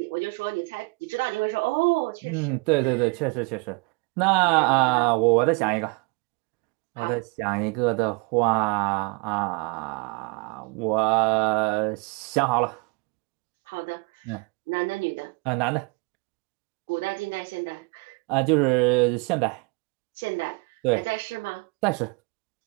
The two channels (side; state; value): left; quieter; 29.9 dB